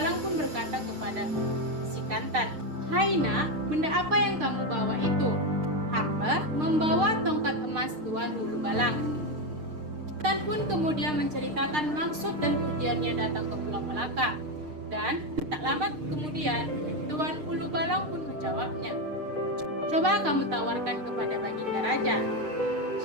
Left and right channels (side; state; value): left; late; 6.6 ms